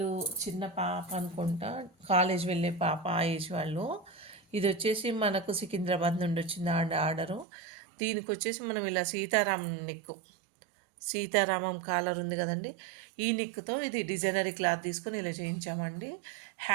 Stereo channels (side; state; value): left; drops out; at 7.5 s